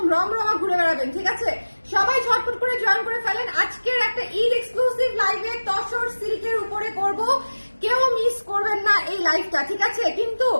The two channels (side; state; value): both; inverted; correlation -1.00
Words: রমরমা ঘুরে বেড়াবেন, ঠিক আছে? সবাই ঝটপট করে জয়েন করে ফেলেন। আজকের একটা ঈদ এক্সক্লুসিভ লাইভে তসর সিল্কের উপরে করব, কেউ মিস করবেন না এই লাইভটা, ঠিক আছে? কিন্তু